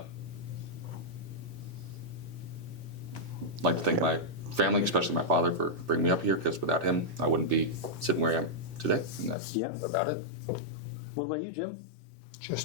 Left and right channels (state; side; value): drops out; right; at 9.3 s